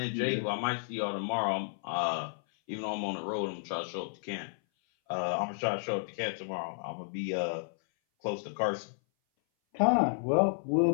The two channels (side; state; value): right; silent; 56 dB below the other